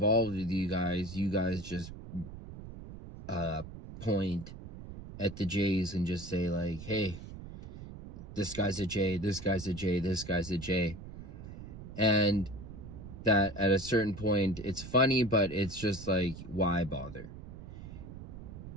with you guys just point at the J's and just say like, hey, this guy's a J, this guy's a J, this guy's a J. And that at a certain point, it's funny, but it's just like, why bother?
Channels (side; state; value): right; noise; rumble, 12 dB below the sound